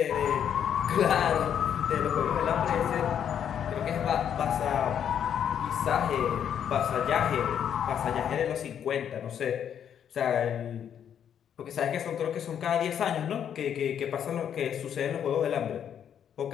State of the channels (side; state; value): right; quieter; 8.9 dB